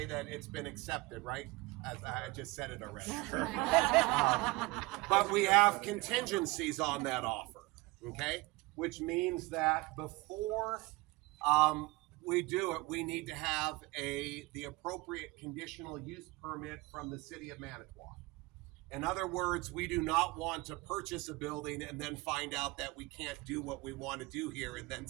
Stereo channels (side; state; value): left; quieter; 22.0 dB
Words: that it's been accepted, right? As I just said it already. But we have contingencies on that offer, okay? Which means that before we do it, we need to have the appropriate conditional use permit from the city of Manitowoc. In other words, we do not want to purchase a building and then find out that we can't do what we want to do here and then